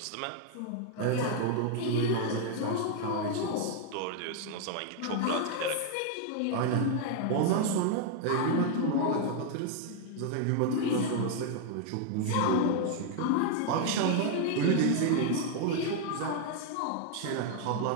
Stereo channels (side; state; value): both; different; correlation 0.00